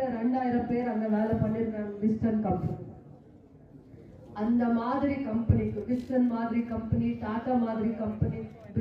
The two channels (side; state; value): both; identical; correlation 1.00